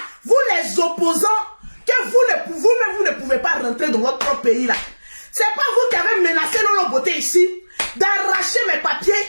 Vous les opposants, que vous-même vous ne pouvez pas rentrer dans votre propre pays là. C'est pas vous qui avez menacé Lolo Boté ici, d'arracher mes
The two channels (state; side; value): inverted; both; correlation -1.00